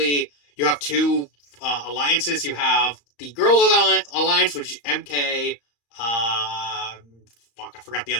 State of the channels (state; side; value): late; right; 35 ms